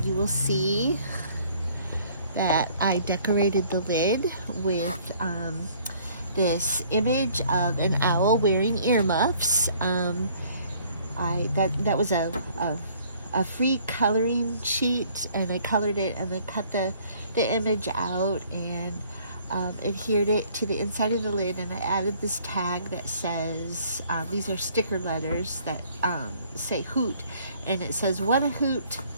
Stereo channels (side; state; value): both; inverted; correlation -0.59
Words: you will see that I decorated the lid with this image of an owl wearing earmuffs. That was a free coloring sheet, and I colored it and then cut the image out and adhered it to the inside of the lid, and I added this tag that says, these are sticker letters that say hoot, and it says, "What a hoot,